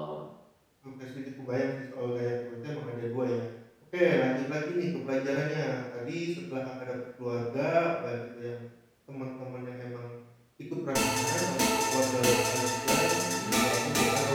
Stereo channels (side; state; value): both; identical; correlation 1.00